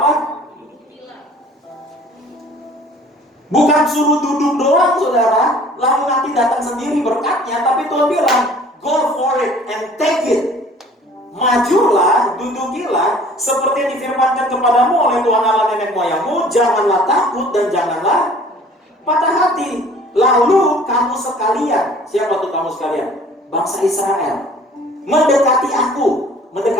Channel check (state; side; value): normal; both; correlation 0.51